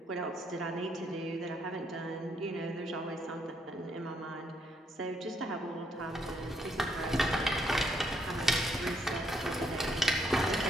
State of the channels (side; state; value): both; normal; correlation 0.73